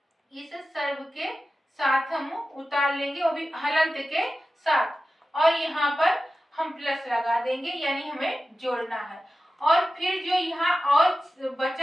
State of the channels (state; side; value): normal; both; correlation 0.93